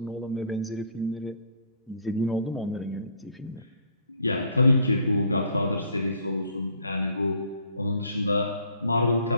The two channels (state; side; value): inverted; both; correlation -0.58